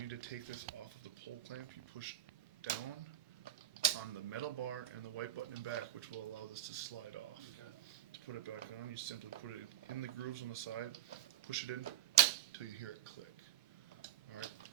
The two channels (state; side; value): quieter; left; 12.1 dB